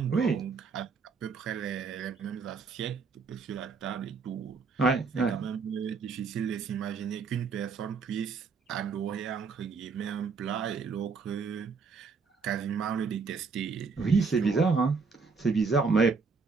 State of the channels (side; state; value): left; quieter; 4.9 dB